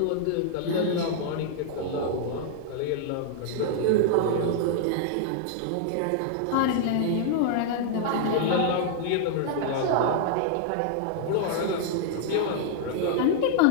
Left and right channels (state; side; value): different; both; correlation -0.01